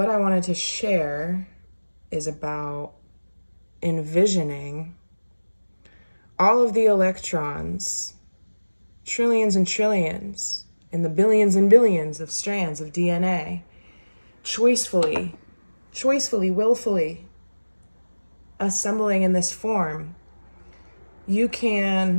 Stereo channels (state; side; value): inverted; both; correlation -1.00